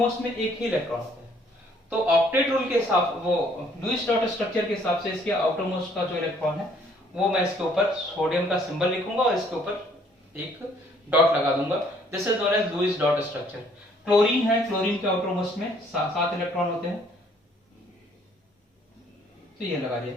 में एक ही इलेक्ट्रॉन होता है, तो ऑक्टेट रूल के हिसाब, वो लुईस डॉट स्ट्रक्चर के हिसाब से इसके आउटर मोस्ट का जो इलेक्ट्रॉन है वो मैं इसके ऊपर सोडियम का सिंबल लिखूंगा और इसके ऊपर एक डॉट लगा दूंगा, this is known as Lewis dot structure. Chlorine है, क्लोरीन के आउटर मोस्ट में 7 इलेक्ट्रॉन होते हैं, तो ये लगा दिया।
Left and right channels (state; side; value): normal; both; correlation 0.62